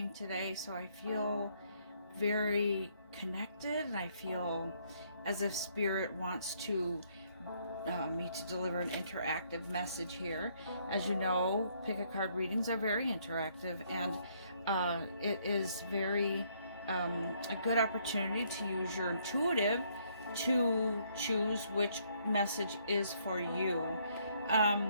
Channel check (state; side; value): inverted; both; correlation -0.68